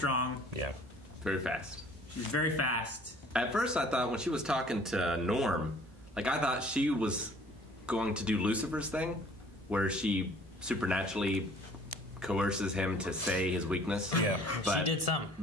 Yeah. Very fast. She's very fast. At first, I thought when she was talking to Norm, like, I thought she was going to do Lucifer's thing, where she supernaturally coerces him to say his weakness. Yeah. But, she did some.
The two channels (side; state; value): both; normal; correlation 0.53